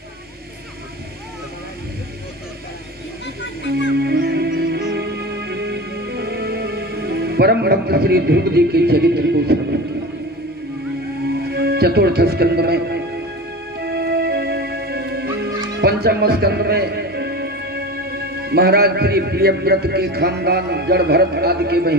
परम भक्त श्री ध्रुव जी के चरित्र को श्रवण किया। चतुर्थ स्कंद में, पंचम स्कंद में महाराज श्री प्रियव्रत के खानदान जड़ भरत आदि के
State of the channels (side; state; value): both; normal; correlation 0.30